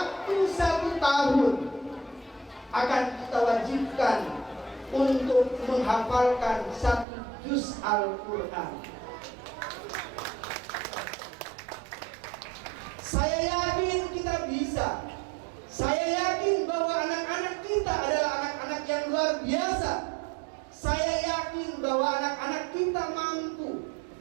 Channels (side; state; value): left; drops out; at 7.1 s